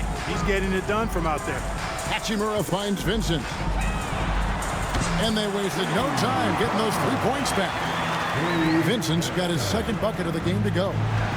He's getting it done from out there. Hachimura finds Vincent. And they wasted no time getting those 3 points back. Vincent's got his 2nd bucket of the game to go. The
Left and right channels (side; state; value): both; identical; correlation 1.00